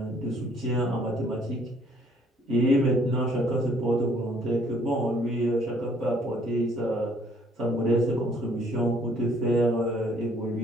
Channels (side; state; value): both; normal; correlation 0.62